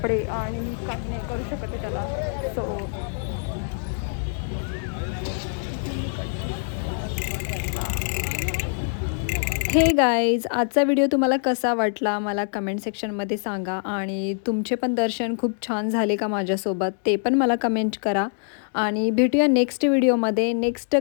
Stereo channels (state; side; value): silent; right; 62 dB below the other